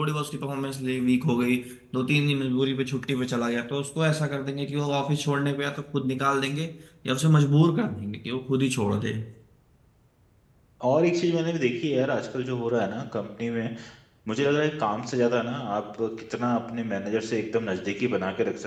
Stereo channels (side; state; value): both; identical; correlation 1.00